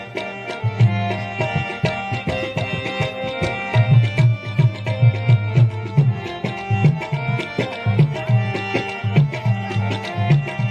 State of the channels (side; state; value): both; identical; correlation 1.00